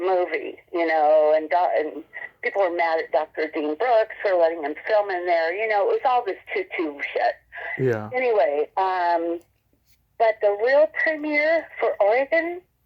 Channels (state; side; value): identical; both; correlation 1.00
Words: and people were mad at Dr. Dean Brooks for letting him film in there. It was all this tutu shit. Yeah. Anyway, but the real premiere for Oregon